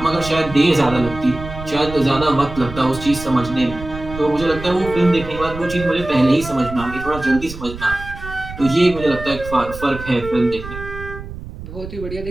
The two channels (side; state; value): right; noise; rumble, 11 dB below the sound